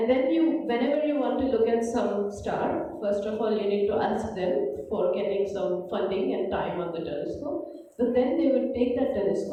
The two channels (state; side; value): identical; both; correlation 1.00